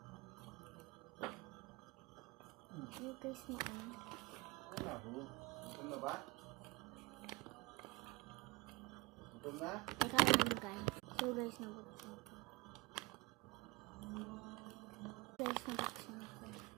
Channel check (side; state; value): left; quieter; 22.3 dB